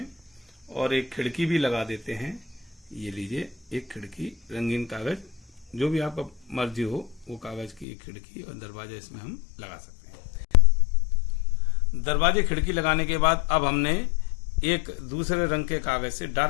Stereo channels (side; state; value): right; drops out; at 7.9 s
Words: और एक खिड़की भी लगा देते हैं। ये लीजिए, एक खिड़की रंगीन कागज, जो भी आपका मर्जी हो वो कागज की एक खिड़की और दरवाजा इसमें हम लगा सकते हैं। दरवाजे खिड़की लगाने के बाद अब हमने एक दूसरे रंग के कागज से,